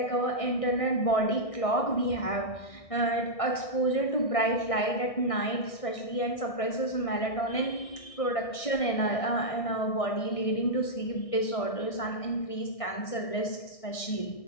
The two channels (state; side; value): late; right; 1.6 ms